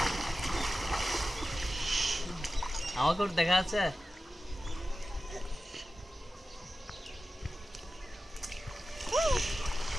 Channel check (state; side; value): normal; both; correlation 0.94